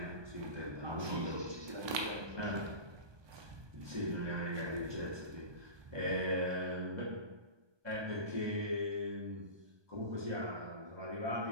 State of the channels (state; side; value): late; left; 1.2 ms